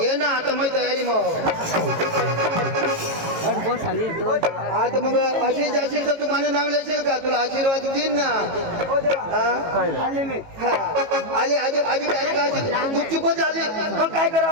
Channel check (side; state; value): left; late; 18 ms